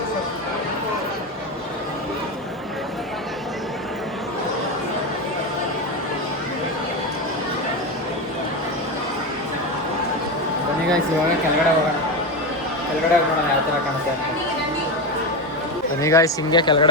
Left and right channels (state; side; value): normal; both; correlation 0.16